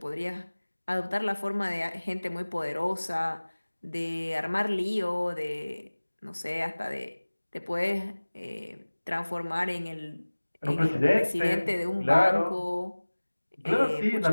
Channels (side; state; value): both; inverted; correlation -1.00